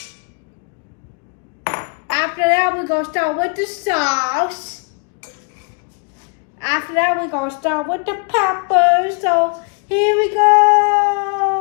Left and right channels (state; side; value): quieter; right; 35.2 dB